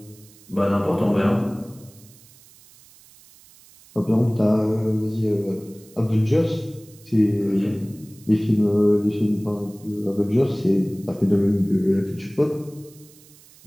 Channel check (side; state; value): right; noise; hiss, 25 dB below the sound